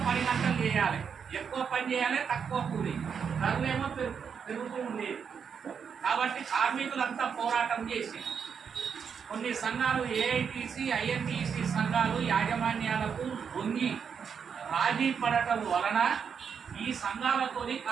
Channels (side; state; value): left; quieter; 6.8 dB